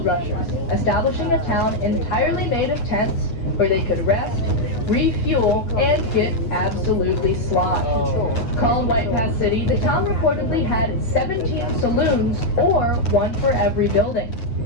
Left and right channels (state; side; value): late; right; 8.7 ms